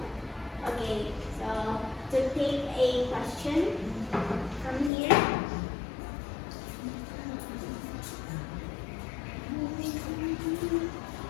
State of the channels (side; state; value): right; drops out; at 4.9 s